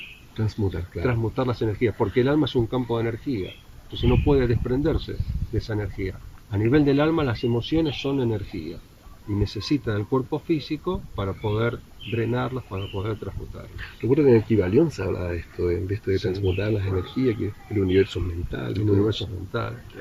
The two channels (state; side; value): identical; both; correlation 1.00